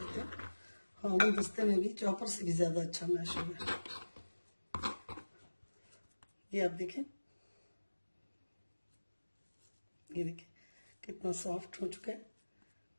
हूँ, हाँ वो दस्ते में भी चॉपर से भी ज्यादा अच्छा मैश हो गया। ये आप देखें, ये देखें कितना सॉफ्ट हो चुका है।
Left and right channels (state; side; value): inverted; both; correlation -1.00